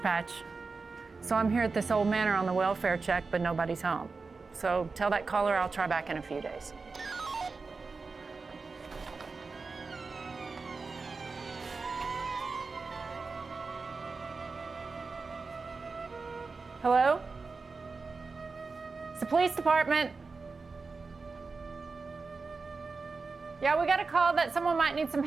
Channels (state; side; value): quieter; left; 4.3 dB